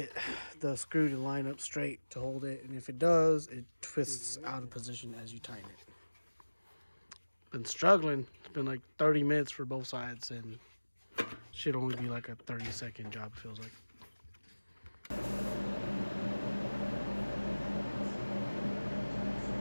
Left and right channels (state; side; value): inverted; both; correlation -1.00